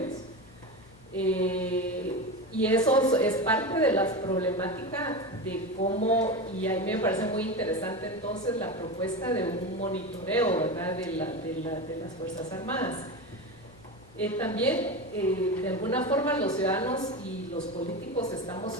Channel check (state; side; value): noise; left; hum, 25 dB below the sound